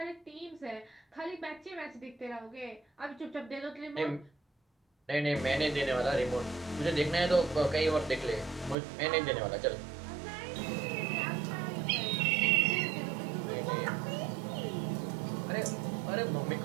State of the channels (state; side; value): drops out; left; at 8.8 s